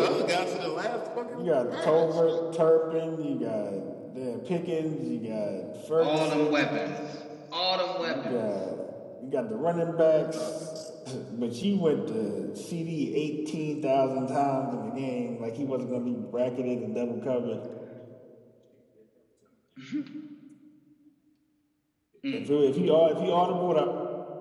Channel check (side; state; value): both; identical; correlation 1.00